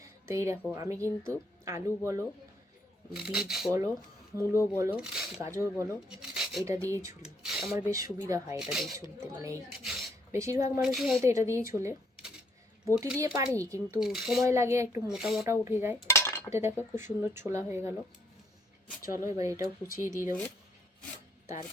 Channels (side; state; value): both; normal; correlation 0.70